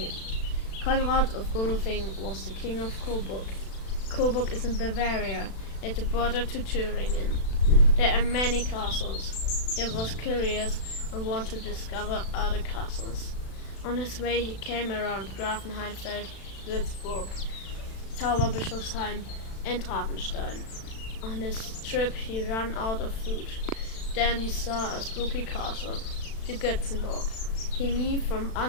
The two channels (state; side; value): late; right; 36 ms